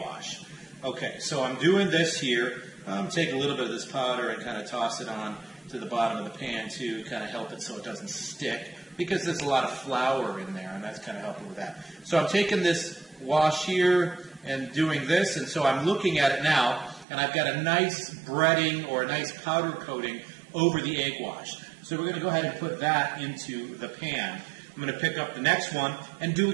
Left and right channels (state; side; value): drops out; left; at 17.1 s